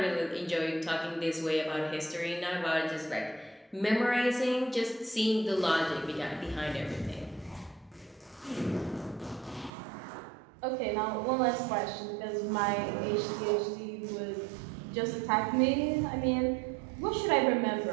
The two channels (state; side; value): drops out; left; at 9.7 s